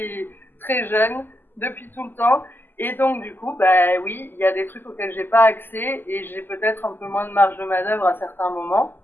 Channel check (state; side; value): late; right; 0.092 ms